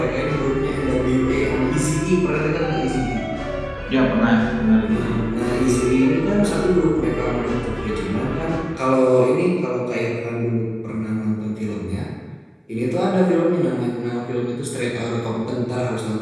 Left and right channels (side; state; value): both; identical; correlation 1.00